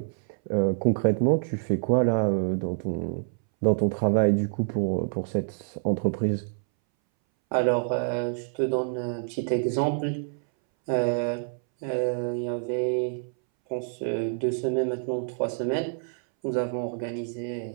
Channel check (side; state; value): left; silent; 60 dB below the other